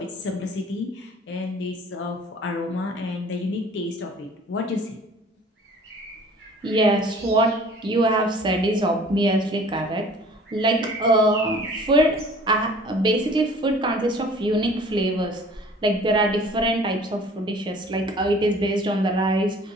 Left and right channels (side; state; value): both; normal; correlation 0.50